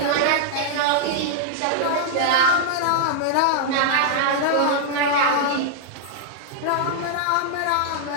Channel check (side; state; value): both; different; correlation -0.01